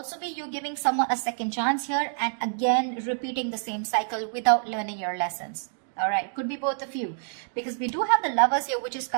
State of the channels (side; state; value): left; silent; digital silence